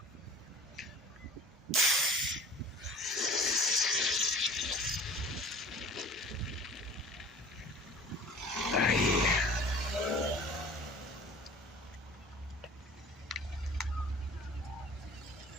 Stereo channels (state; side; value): normal; both; correlation 0.43